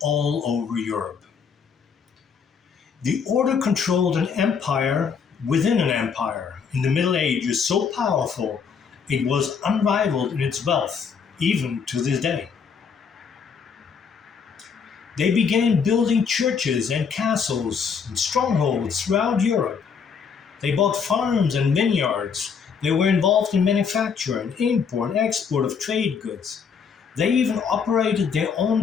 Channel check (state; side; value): quieter; right; 6.2 dB